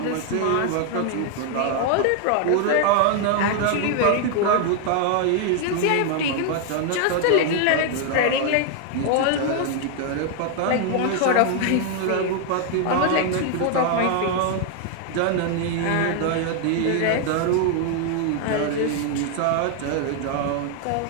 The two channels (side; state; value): both; different; correlation 0.00